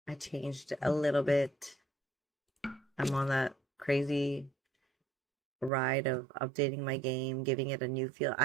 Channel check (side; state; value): left; drops out; at 5.7 s